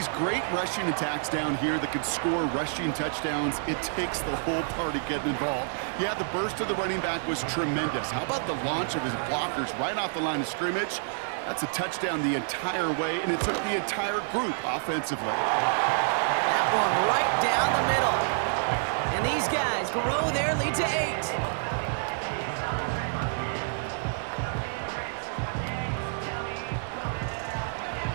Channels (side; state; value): left; silent; digital silence